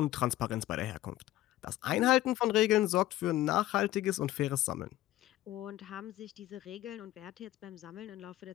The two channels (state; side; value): quieter; right; 15.2 dB